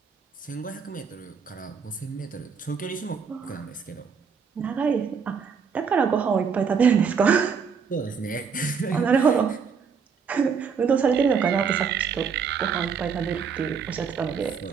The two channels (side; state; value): left; quieter; 6.2 dB